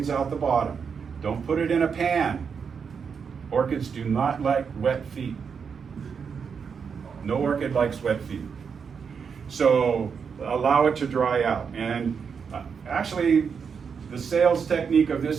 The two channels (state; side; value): quieter; left; 6.3 dB